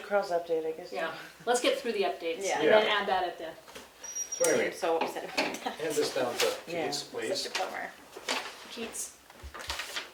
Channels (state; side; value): identical; both; correlation 1.00